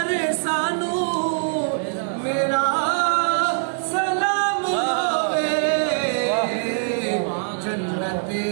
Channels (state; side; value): silent; left; digital silence